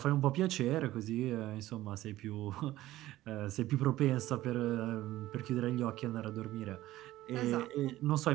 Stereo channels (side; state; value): left; quieter; 15.6 dB